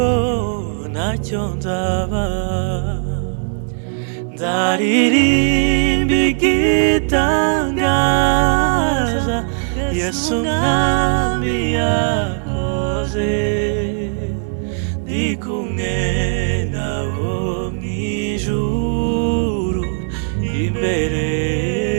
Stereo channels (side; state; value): left; silent; digital silence